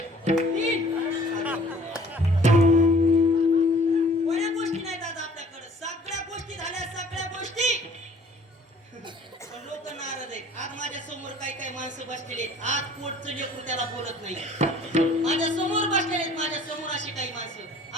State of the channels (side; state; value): both; normal; correlation 0.53